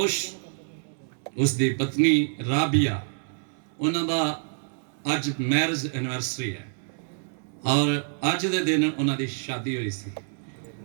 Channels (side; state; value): left; silent; 60 dB below the other